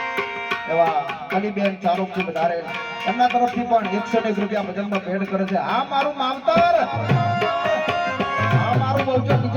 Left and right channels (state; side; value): identical; both; correlation 1.00